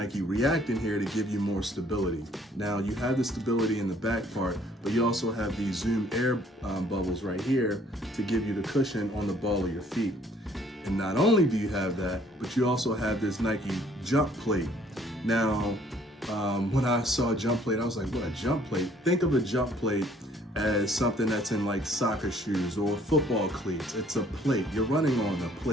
React in here to give you more stability. Now, you have the stability in the back part, but you also have these Zoom Air bubbles right here to give you the cushion on the ball of your feet. And not only do you have that, but you also have this Nike jump plate. Now, when I saw jump plate, I was like, what, a jump plate? Think of a jump plate as something that's in like soccer shoes or football cleats. It's a plate. You're running on a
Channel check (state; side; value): normal; both; correlation 0.60